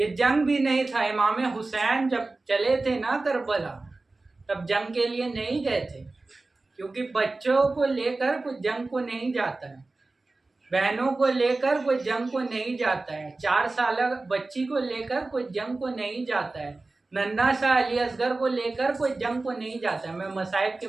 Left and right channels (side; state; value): left; quieter; 3.3 dB